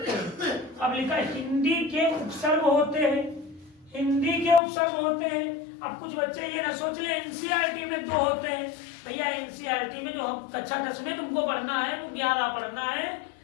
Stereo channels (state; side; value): drops out; right; at 4.6 s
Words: हैं। अब लिखा है हिंदी के उपसर्ग होते हैं, हिंदी के उपसर्ग होते हैं। अब कुछ बच्चे ये ना सोच ले NCERT में 2 होते हैं। भैया NCERT में जो हम कक्षा 10 में तुमको पढ़ना है तो 11 पढ़ना है,